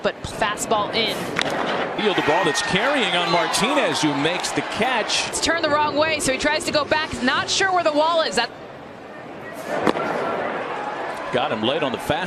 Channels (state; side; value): identical; both; correlation 1.00